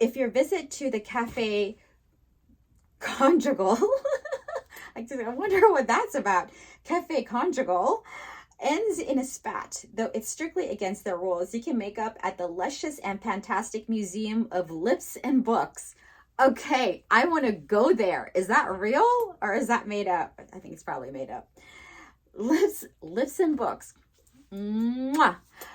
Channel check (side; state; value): both; identical; correlation 1.00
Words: visit to the Café Conjugal, I wonder what that's about. Cafe conjugal ends in a spat, though it's strictly against their rules. You can make up at the luscious and fantastic Museum of Lips and Books. Okay, I want to go there. Is that real or is that made up? I think it's probably made up. Lips and Books. Mwah.